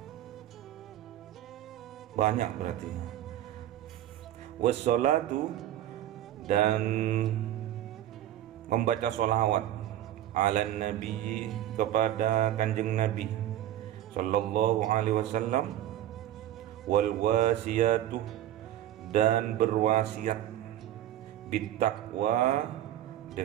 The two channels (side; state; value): left; quieter; 12.4 dB